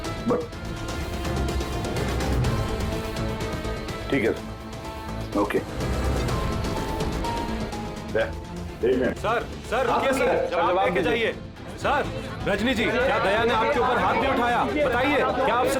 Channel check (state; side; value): identical; both; correlation 1.00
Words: ठीक है, ओके। सर रुकिए सर, जवाब देके जाइए। सर, रजनी जी, क्या दया ने आपके ऊपर हाथ भी उठाया? बताइए, क्या आपसे